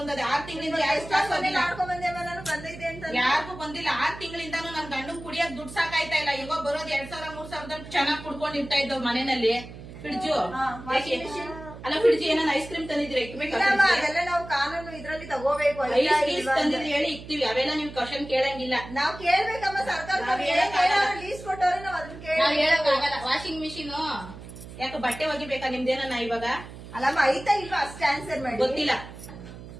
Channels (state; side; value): noise; right; hum, 14 dB below the sound